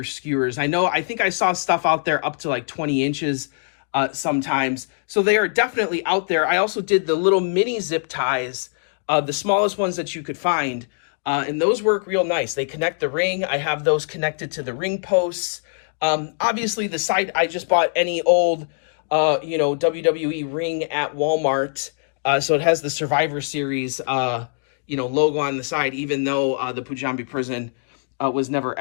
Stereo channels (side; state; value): right; silent; digital silence